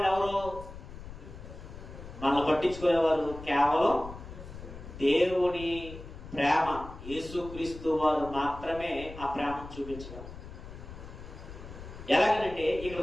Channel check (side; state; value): left; noise; rumble, 13 dB below the sound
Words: ఎవరు? మనల్ని పట్టించుకునేవారు కేవలం దేవుని ప్రేమ, యేసుక్రీస్తు వారు మాత్రమే ఆ ప్రేమను చూపించగలరు. ఎలాగనంటే ఇక్కడ